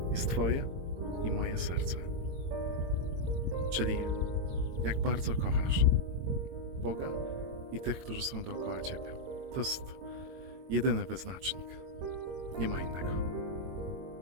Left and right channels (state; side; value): late; left; 22 ms